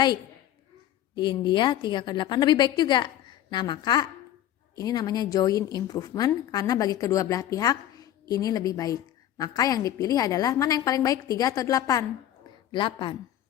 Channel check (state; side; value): quieter; right; 11.9 dB